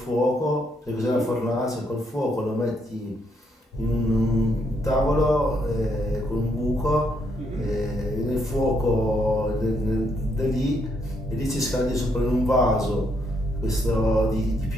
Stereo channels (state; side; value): normal; both; correlation 0.75